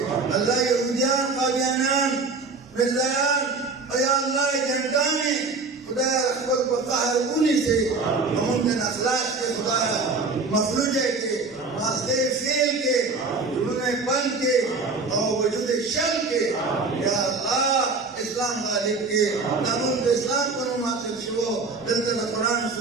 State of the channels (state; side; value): quieter; left; 4.0 dB